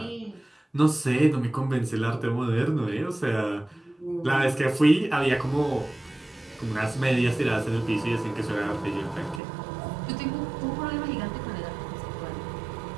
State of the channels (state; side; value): drops out; left; at 9.4 s